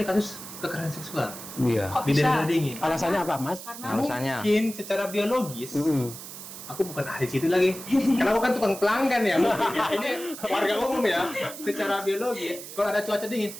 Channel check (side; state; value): right; noise; hiss, 12 dB below the sound